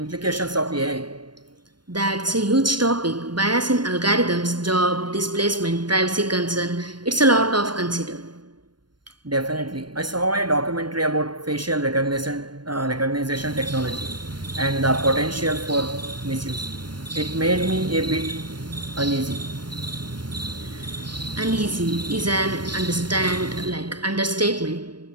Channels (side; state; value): left; late; 0.72 ms